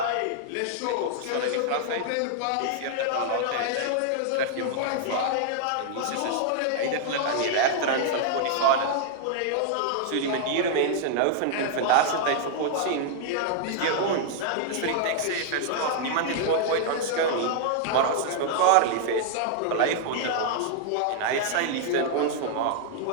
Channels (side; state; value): both; different; correlation -0.01